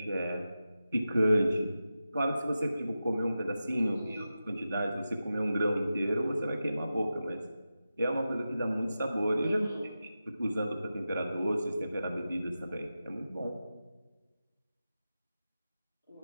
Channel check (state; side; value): inverted; both; correlation -0.92